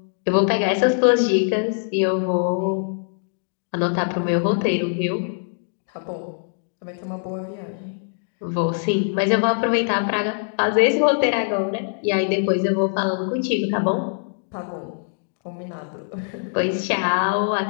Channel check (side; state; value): right; silent; digital silence